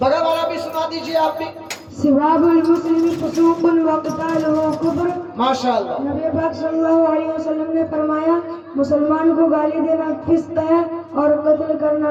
والا بھی سنا دیجیے آپ بھی۔ سباب المسلم فسوق وقتالہ کفر، ماشاءاللہ، نبی پاک صلی اللہ علیہ وسلم نے فرمایا مسلمان کو گالی دینا فسق ہے اور قتل کرنا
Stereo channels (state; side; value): identical; both; correlation 1.00